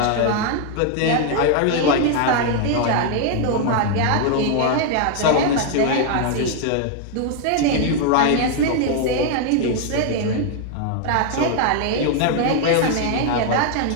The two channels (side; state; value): both; different; correlation 0.00